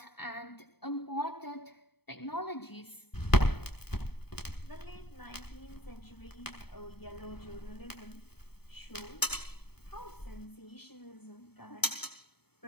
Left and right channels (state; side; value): late; right; 0.97 ms